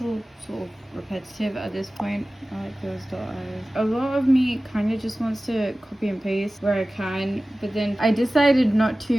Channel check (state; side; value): normal; both; correlation 0.97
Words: sort of repetitive at this point. I like those dot eyes. A lot of me kind of just wants to copy and paste where I can, but then I decided not